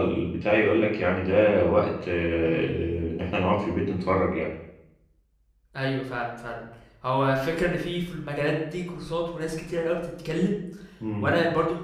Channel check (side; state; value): both; identical; correlation 1.00